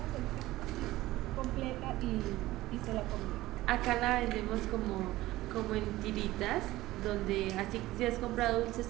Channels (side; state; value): left; quieter; 17.1 dB